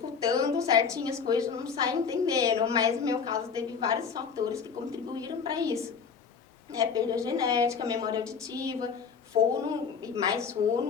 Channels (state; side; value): quieter; right; 6.2 dB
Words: certinho as coisas, não sai entendendo. Mas no meu caso, teve vários fatores que contribuíram para isso. Perda genética, memória auditiva, fono e mais